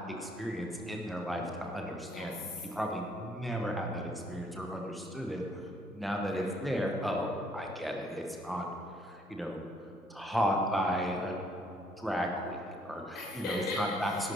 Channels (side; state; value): both; normal; correlation 0.65